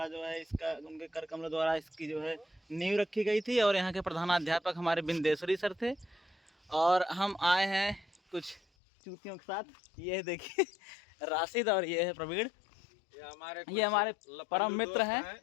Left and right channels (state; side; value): drops out; right; at 8.6 s